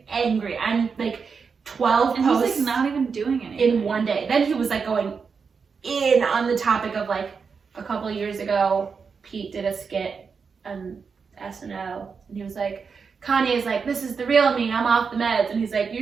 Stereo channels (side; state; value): left; quieter; 5.6 dB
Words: angry. I'm like 12 and posts. He's like not even doing anything in one day. Then he was like going in on the topic of like a couple of years ago, Pete did a skit on SNL, and he was like, Kanye's like, this is the real me, I'm off the meds, and he's like,